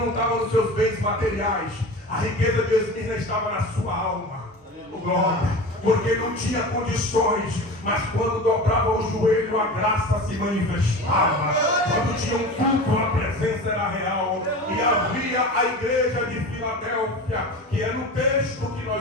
estava nos seus bens materiais. A riqueza de Esmirna estava na sua alma. Glória. Porque não tinha condições, mas quando dobrava o joelho, a graça se manifestava. Quando tinha um culto, a presença era real. E havia a igreja de Filadélfia, que é no texto que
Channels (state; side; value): normal; both; correlation 0.32